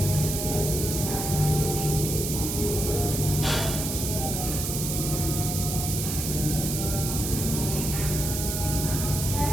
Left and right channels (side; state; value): right; noise; hiss, 3 dB below the sound